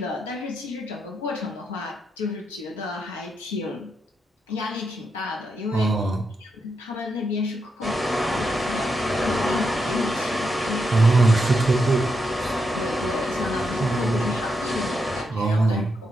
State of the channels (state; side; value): normal; both; correlation 0.83